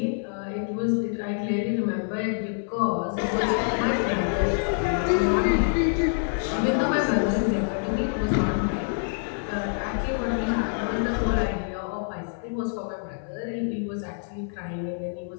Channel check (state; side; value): silent; right; 58 dB below the other